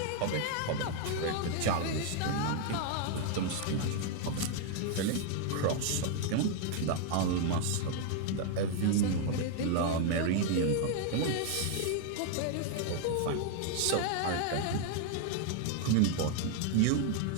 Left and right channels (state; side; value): different; both; correlation 0.00